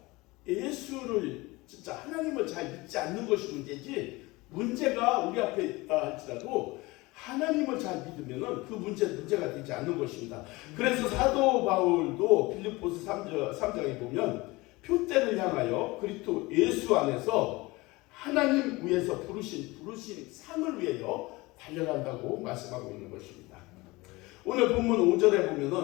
예수를 진짜 하나님을 잘 믿지 않는 것이 문제지, 문제가 우리 앞에 있다 할지라도 하나님을 잘 믿으면은 그 문제가 되지 않는 것입니다. 그래서 사도 바울도 빌립보서 3장에 보면 표대를 향하여 그리스도 예수 안에서 하나님 위에서 부르신 상을 위하여 달려간다고 말씀하고 있는 것입니다. 오늘 본문 5절에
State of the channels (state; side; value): quieter; right; 22.2 dB